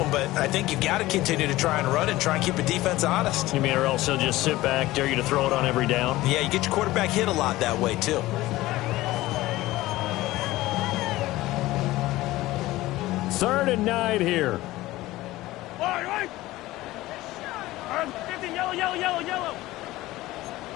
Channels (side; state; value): right; quieter; 17.6 dB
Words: but I think you've got to continue to try and run and try and keep the defense honest. You mean or else they'll just sit back, dare you to throw it on every down? Yeah, you get your quarterback hit a lot that way, too. Third and 9 here. Right. 15, yellow.